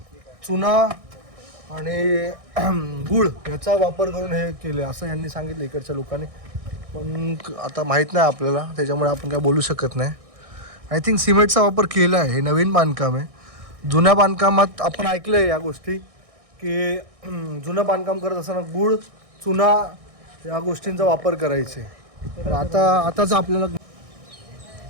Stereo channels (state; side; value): late; left; 1.6 ms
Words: चुना आणि गुळ याचा वापर करून हे केले असं यांनी सांगितलं इकडच्या लोकांनी. पण आता माहीत नाही आपल्याला, त्याच्यामुळे आपण काय बोलू शकत नाही. आय थिंक सिमेंटचा वापर केला आहे. हे नवीन बांधकाम आहे. जुन्या बांधकामात आपण ऐकलं आहे या गोष्टी की जुनं बांधकाम करत असताना गुळ, चुना या गोष्टींचा वापर करायचे. तर आताच आपल्याला